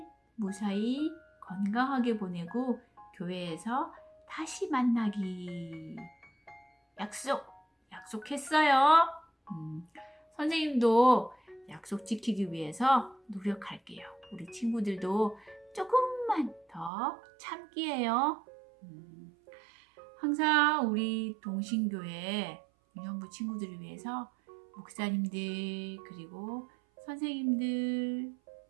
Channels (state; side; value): drops out; left; at 16.9 s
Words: 무사히 건강하게 보내고 교회에서 다시 만나기 약속했어요. 선생님도 약속 지키기 위해서 노력할게요. 우리 친구들도 조금만 더 참기예요. 항상 우리 동신교회 유년부 친구들을 위해서 목사님들 그리고 선생님들